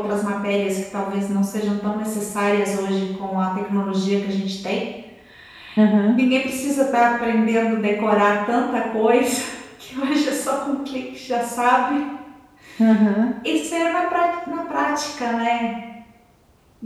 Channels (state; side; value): identical; both; correlation 1.00